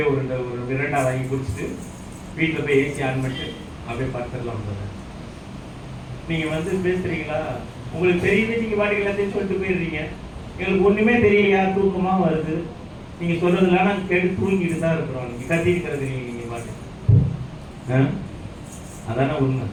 ஒரு விரண்டா வாங்கி குடிச்சிட்டு வீட்டில் போய் ஏசி ஆன் பண்ணிட்டு அப்படியே பார்த்துடலாம். நீங்க பேசுறீங்களா? உங்களுக்கு தெரியுது, நீங்க பாட்டுக்கு எல்லாத்தையும் சொல்லிட்டு போயிடுறீங்க. எங்களுக்கு ஒண்ணுமே தெரியலையா? தூக்கமா வருது. நீங்க சொல்றதுலாம் நாங்கள் கேட்டு தூங்கிட்டு தான் இருக்கிறோம். நீங்க கத்திருக்கிறது நீங்க பாட்டு. அதான உண்மை.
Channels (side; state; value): both; identical; correlation 1.00